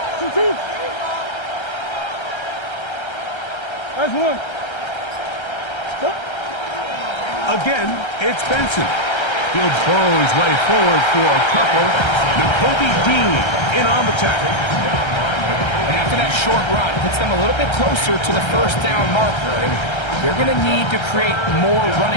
That's one. Again, it's Benson. He'll burrow his way forward for a couple. Nakobe Dean in on the tackle. And after that short run, puts them a little bit closer to the 1st down marker. And they're going to need to create more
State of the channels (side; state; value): right; late; 1.3 ms